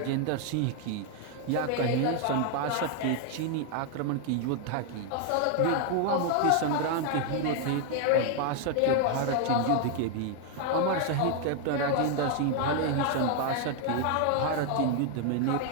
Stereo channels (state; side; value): different; both; correlation 0.00